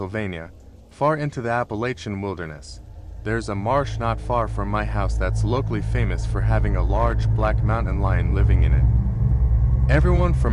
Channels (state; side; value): identical; both; correlation 1.00